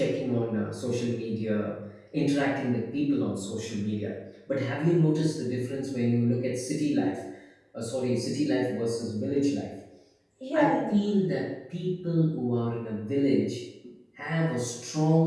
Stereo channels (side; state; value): both; identical; correlation 1.00